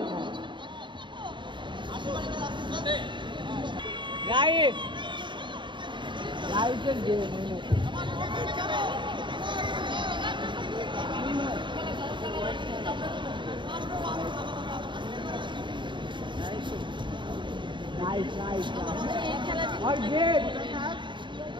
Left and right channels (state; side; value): late; left; 0.23 ms